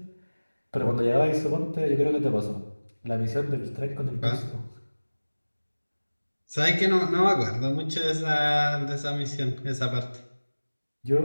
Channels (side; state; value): both; inverted; correlation -1.00